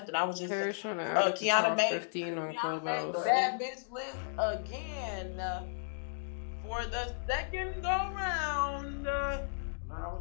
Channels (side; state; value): right; silent; digital silence